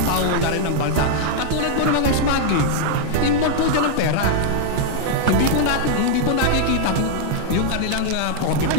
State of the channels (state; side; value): different; both; correlation 0.00